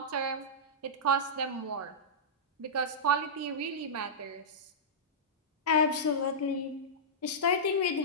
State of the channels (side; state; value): both; normal; correlation -0.13